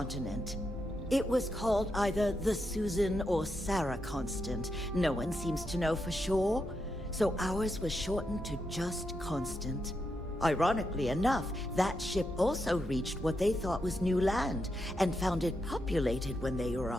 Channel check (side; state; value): both; normal; correlation 0.84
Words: It was called either the Susan or Sarah Constant. No one seems to know for sure, so ours was shortened to just Constant. Ironically enough, that ship also reached what they thought was new land, and found it populated when they